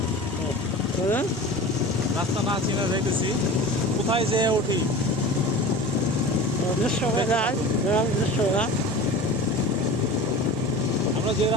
রাস্তা না চিনা যাইতেছি, কোথায় যেয়ে উঠি। আমরা যে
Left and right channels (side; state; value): both; normal; correlation 0.35